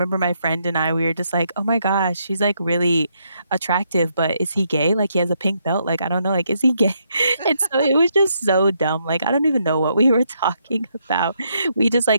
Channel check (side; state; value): both; inverted; correlation -0.76